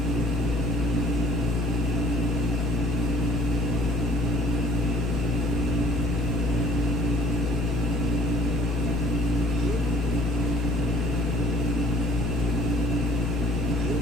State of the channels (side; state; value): both; normal; correlation 0.54